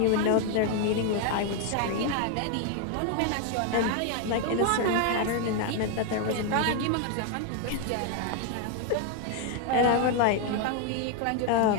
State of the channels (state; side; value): different; both; correlation 0.01